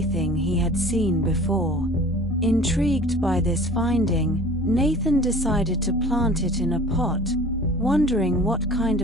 he had seen before. Intrigued by this finding, Nathan decided to plant it in a pot, wondering what kind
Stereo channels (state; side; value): normal; both; correlation 0.44